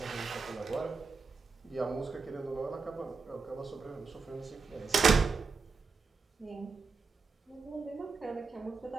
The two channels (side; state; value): left; quieter; 4.6 dB